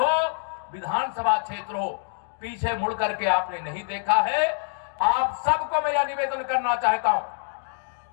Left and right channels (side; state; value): right; silent; digital silence